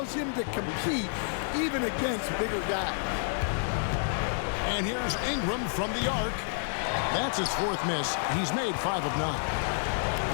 him to compete even against bigger guys. And here's Ingram from the arc. That's his fourth miss. He's made 5 of 9.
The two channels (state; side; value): silent; right; digital silence